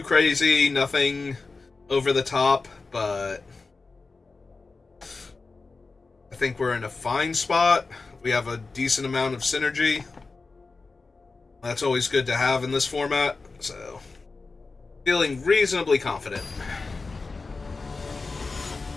crazy, nothing over the top, but I think we're in a fine spot. We have a decent amount of synergy. That's always good to have in this format, so feeling reasonably confident.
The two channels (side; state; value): right; quieter; 4.0 dB